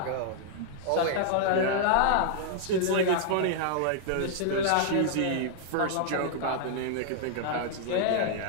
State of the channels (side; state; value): both; different; correlation -0.01